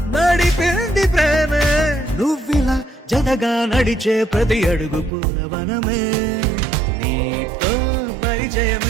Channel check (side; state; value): left; drops out; at 5.1 s